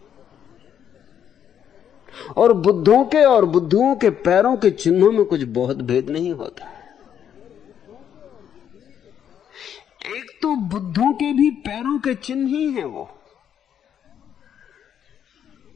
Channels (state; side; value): quieter; right; 9.1 dB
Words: और बुद्धों के और बुद्धुओं के पैरों के चिन्हों में कुछ बहुत भेद नहीं होता। एक तो बुद्धों के भी पैरों के चिन्ह ही हैं वो,